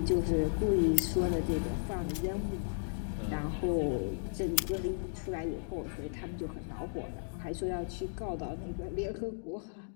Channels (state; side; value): silent; right; digital silence